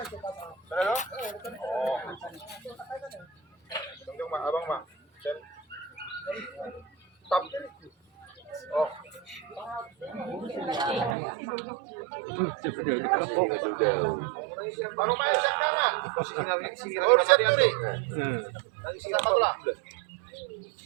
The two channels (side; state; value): left; drops out; at 11.2 s